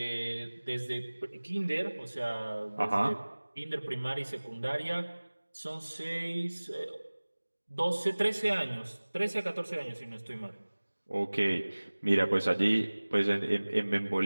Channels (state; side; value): inverted; both; correlation -1.00